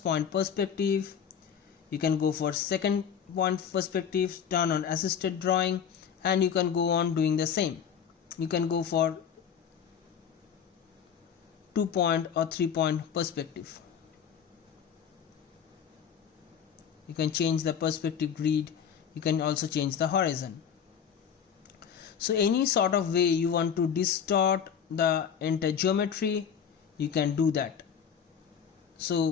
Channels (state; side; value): quieter; right; 7.7 dB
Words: point perspective. You can go for second point perspective, turn on assisted drawing, and you can go on doing the same. You can go for 2-point or 3-point perspective. You can change the perspective grid You can also change the horizon. So any sort of way you want to distort the entire geometry, you can do that. So